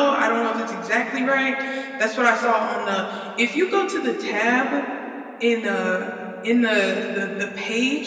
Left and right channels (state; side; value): identical; both; correlation 1.00